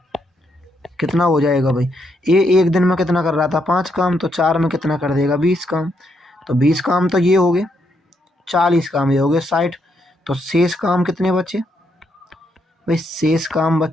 कितना हो जाएगा भाई? ए एक दिन में कितना कर रहा था? 5 काम, तो 4 में कितना कर देगा? 20 काम। तो 20 काम तो ये हो गए, 40 काम ये हो गए 60। तो शेष काम कितने बचे भाई? शेष काम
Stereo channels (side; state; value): both; normal; correlation 0.77